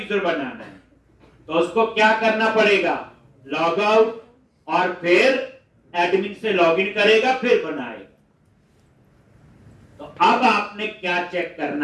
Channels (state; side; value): identical; both; correlation 1.00